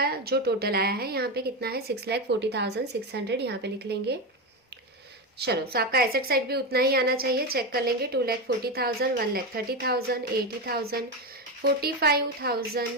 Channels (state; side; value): normal; both; correlation 0.14